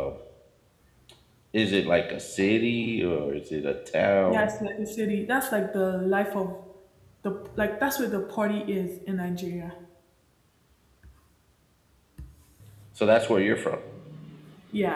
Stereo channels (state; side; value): identical; both; correlation 1.00